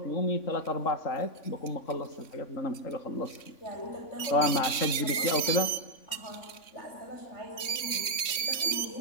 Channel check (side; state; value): right; late; 3.5 ms